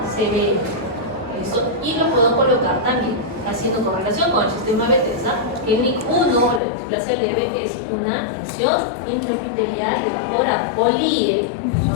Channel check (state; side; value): drops out; right; at 6.6 s